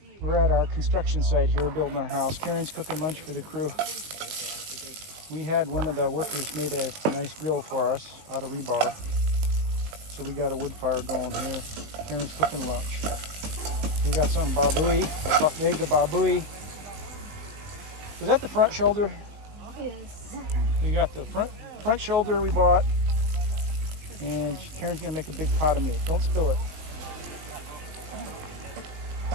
we're at our construction site here building our house. Karen's cooking lunch for the crew. We had one of the workers made a nice grill for us out of rebar. So we got a wood fire going here. Karen's cooking lunch. We got some baboy, a leg of baboy. Was that the front shoulder? Yes. You got the front shoulder we bought. And Karen's gonna make a big pot of meat. Don't spill it.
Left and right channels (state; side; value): late; left; 19 ms